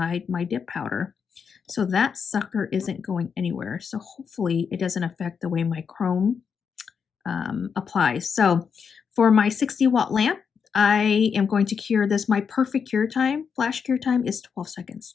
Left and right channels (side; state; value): right; quieter; 6.4 dB